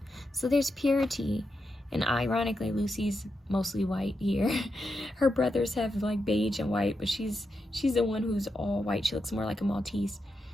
So there's purity. And ironically, Lucy's mostly white here. Her brothers have like beige and white, but she's the one who's all white. She looks more like a Maltese.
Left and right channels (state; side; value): normal; both; correlation 0.86